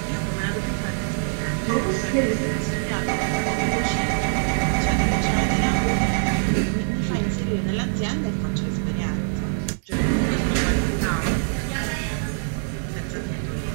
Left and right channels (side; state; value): left; silent; 63 dB below the other